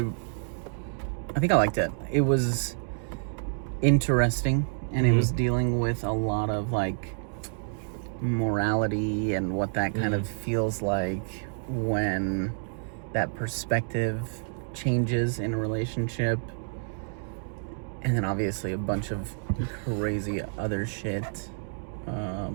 liked it. It was interesting, and it was dealing with a lot of like morality and what that kind of feels like when that perspective changes in a relationship. And then obviously a bunch of crazy other shit.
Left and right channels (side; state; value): left; silent; digital silence